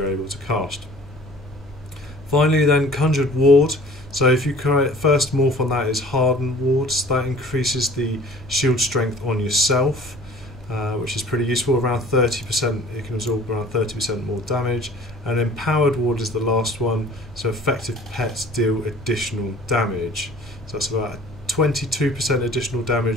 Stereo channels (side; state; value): right; noise; rumble, 22 dB below the sound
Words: able to cast. Finally then, Conjured Ward. So if you create, first morph on that is Hardened Wards. That increases the shield strength on yourself, which is pretty useful. Around 30%, it can absorb around 30% more damage. And Empowered Ward is the last one. So effective pets deal additional damage. So that's about 22% additional